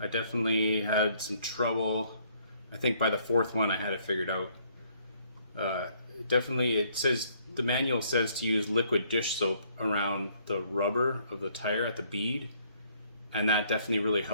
definitely had some trouble. I think by the 4th one I had it figured out. It says, the manual says to use liquid dish soap around the rubber of the tire at the bead, and that definitely really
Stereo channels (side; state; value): both; inverted; correlation -0.65